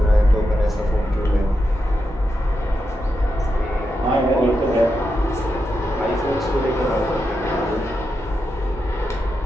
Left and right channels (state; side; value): normal; both; correlation 0.86